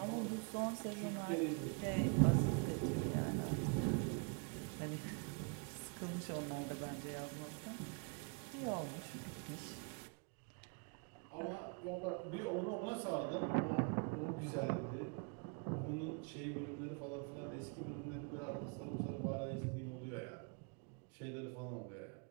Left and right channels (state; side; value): quieter; left; 35.7 dB